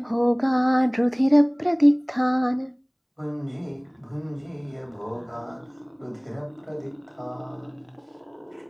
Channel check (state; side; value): identical; both; correlation 1.00